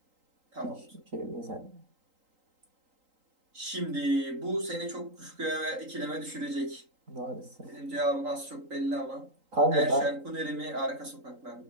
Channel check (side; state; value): left; late; 3.8 ms